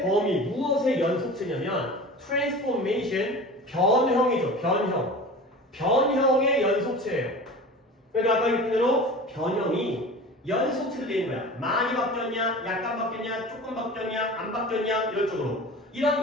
범위, 무엇의 연속체냐면 transformation, 변형이죠. 변형. 변형의 연속체예요. 그러니까 아까 얘기한 대로 변형이 연속체로 되는 거야. 많이 바뀌었냐, 약간 바뀌었냐, 조금 바뀌었냐, 안 바뀌었냐 이런 쪽으로.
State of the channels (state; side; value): normal; both; correlation 0.36